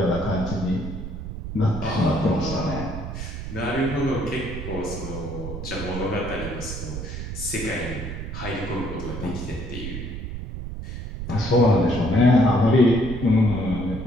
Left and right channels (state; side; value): noise; right; rumble, 7 dB below the sound